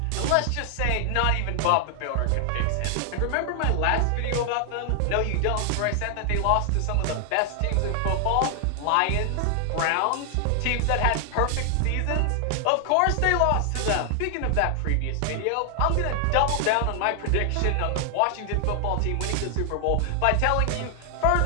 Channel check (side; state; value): both; different; correlation 0.00